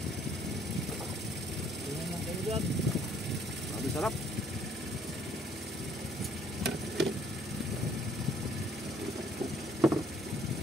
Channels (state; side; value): normal; both; correlation 0.63